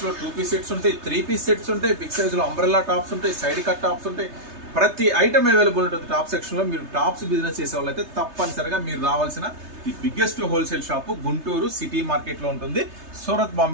2 పీస్ సెట్స్ ఉంటాయి, 3 పీస్ సెట్స్ ఉంటాయి, బిగ్ సైజులో అంబ్రెల్లా టాప్స్ ఉంటాయి, సైడ్ కట్ టాప్స్ ఉంటాయి. ప్రతి ఐటమ్ అవైలబుల్ ఉంటుంది టాప్ సెక్షన్లో. మీరు టాప్స్ బిజినెస్ చేసే వాళ్ళైతే తప్పనిసరిగా మీరు రావాల్సిన the biggest wholesale shop Guntur city మార్కెట్లో ఉంటుంది, Surat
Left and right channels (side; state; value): left; late; 3.3 ms